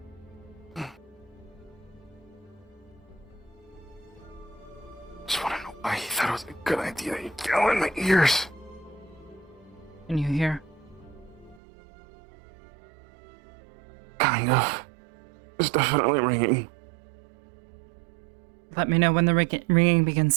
Just want to know why he thought it was a good idea. He'd yell in my ears. Can you hear? Kind of. It's definitely ringing. Let me know when the ringing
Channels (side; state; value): left; drops out; at 11.6 s